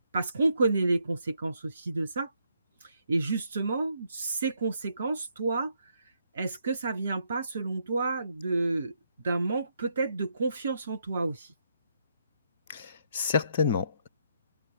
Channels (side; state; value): both; inverted; correlation -0.75